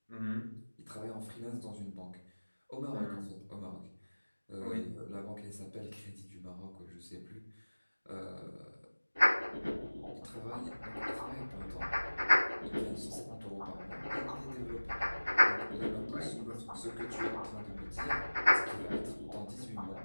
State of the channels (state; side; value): inverted; both; correlation -1.00